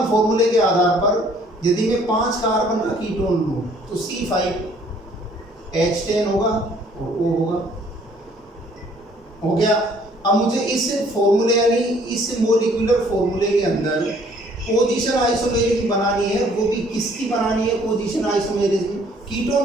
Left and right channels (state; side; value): normal; both; correlation 0.60